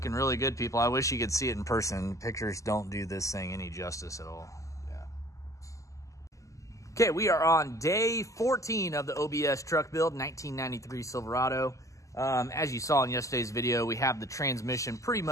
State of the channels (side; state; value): right; late; 0.16 ms